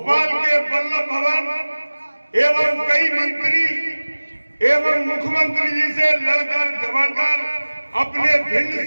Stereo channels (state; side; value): inverted; both; correlation -1.00